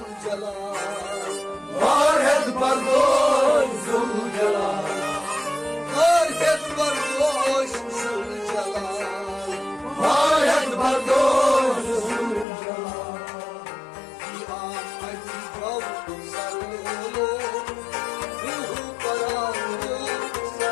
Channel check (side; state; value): right; drops out; at 12.5 s